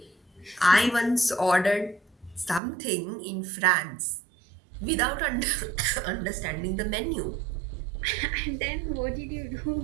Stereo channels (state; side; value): drops out; left; at 2.6 s